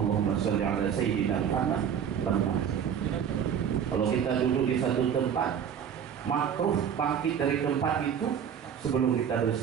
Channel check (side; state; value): left; quieter; 8.2 dB